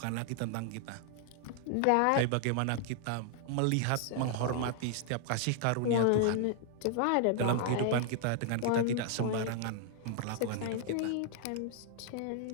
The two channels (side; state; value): both; different; correlation 0.00